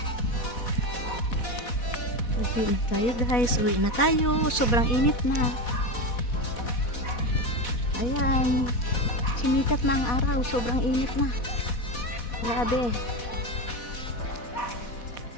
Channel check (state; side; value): late; right; 4.1 ms